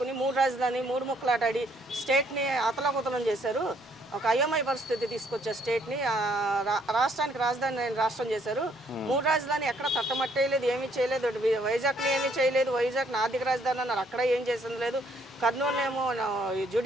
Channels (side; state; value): both; normal; correlation 0.67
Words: 3 రాజధాని 3 ముక్కలాటాడి స్టేట్ని అతలాకుతలం చేశారు. ఒక అయోమయ పరిస్థితి తీసుకొచ్చారు స్టేట్ని. రాష్ట్రానికి రాజధాని రాష్ట్రం చేశారు. 3 రాజధాని ఎక్కడ తట్టమట్టేయలేదు, ఏమీ చేయలేదు. వైజాగ్ని ఏమీ చేయలేదు. వైజాగ్ని ఆర్థిక రాజధాని అన్నారు, అక్కడ ఏం చేసింది లేదు. కర్నూలు ఏమో